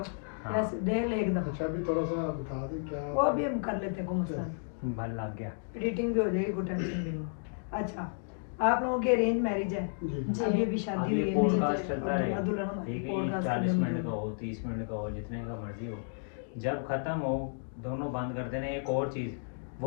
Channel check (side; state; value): right; silent; digital silence